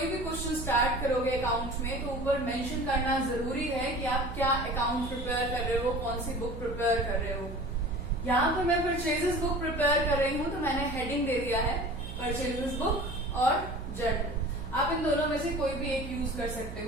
भी क्वेश्चन स्टार्ट करोगे अकाउंट में तो ऊपर मेंशन करना जरूरी है कि आप क्या अकाउंट प्रिपेयर कर रहे हो, कौन सी बुक प्रिपेयर कर रहे हो। यहाँ पर मैं परचेजेस बुक प्रिपेयर कर रही हूँ तो मैंने हेडिंग दे दिया है परचेजेस बुक और जर्नल। आप इन दोनों में से कोई भी एक यूज कर सकते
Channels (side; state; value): right; noise; hum, 10 dB below the sound